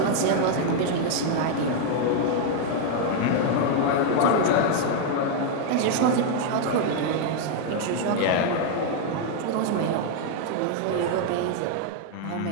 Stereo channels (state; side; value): different; both; correlation 0.00